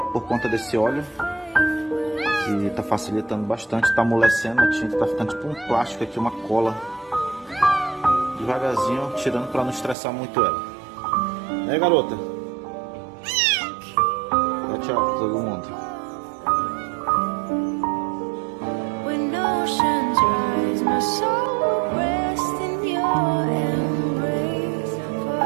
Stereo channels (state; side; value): drops out; left; at 10.0 s